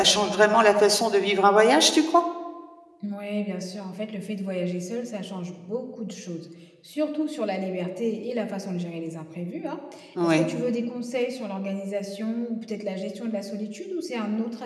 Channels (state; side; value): identical; both; correlation 1.00